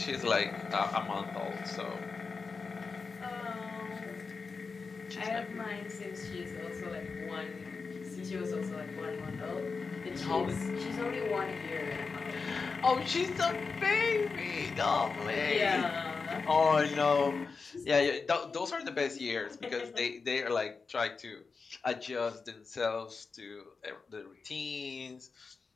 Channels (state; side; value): quieter; right; 4.7 dB